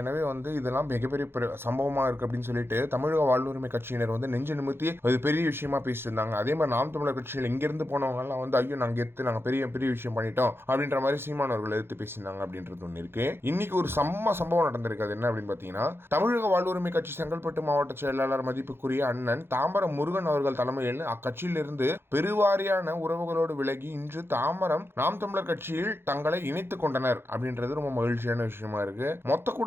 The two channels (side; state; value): left; late; 0.11 ms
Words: இதெல்லாம் மிகப்பெரிய சம்பவமாக இருக்குது அப்படின்னு சொல்லிட்டு தமிழக வாழ்வுரிமை கட்சியினர் நெஞ்சு நிமித்தி அது பெரிய விஷயமா பேசிட்டு இருந்தாங்க. அதே மாதிரி நாம் தமிழர் கட்சியில் இங்கிருந்து போனவங்கலாம் ஐயோ நாங்கள் நாங்கள் பெரிய பெரிய விஷயம் பண்ணிட்டோம் அப்படின்ற மாதிரி சீமானவர்கள் எடுத்து பேசியிருந்தாங்க அப்படின்றது ஒன்று இருக்கு. இன்னைக்கு ஒரு சம்பவம் நடந்திருக்கு. அது என்ன அப்படின்னு பார்த்தீங்கன்னா, தமிழக வாழ்வுரிமை கட்சி செங்கல்பட்டு மாவட்ட செயலாளர் மதிப்புக்குரிய அண்ணன் தாம்பரம் முருகன் அவர்கள் தலைமையில் அக்கட்சியிலிருந்து பெருவாரியான உறவுகளோடு விலகி இன்று தாம்பரம் நாம் தமிழர் கட்சியில் தங்களை இணைத்துக் கொண்டனர் அப்படின்றது ரொம்ப மகிழ்ச்சியான விஷயமா இருக்கு. மொத்த